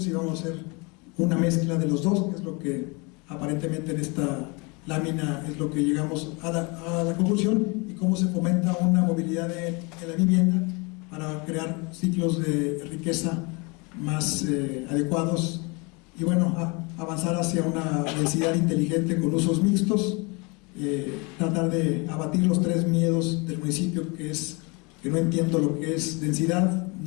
vamos a hacer una mezcla de los dos, que es lo que aparentemente en esta lámina es lo que llegamos a la conclusión, y cómo se fomenta una movilidad de la vivienda para crear ciclos de riqueza más adecuados y bueno, avanzar hacia una densidad inteligente con usos mixtos, tratar de abatir los 3 miedos del municipio, que es que no entiendo lo que es densidad,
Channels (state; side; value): quieter; right; 29.1 dB